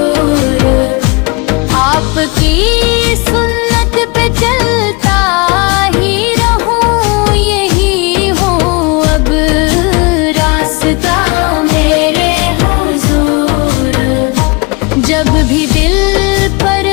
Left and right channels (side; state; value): right; quieter; 28.5 dB